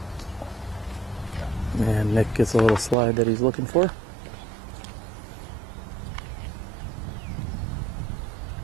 And Nick gets a little slide that he's looking for.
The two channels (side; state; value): left; drops out; at 3.0 s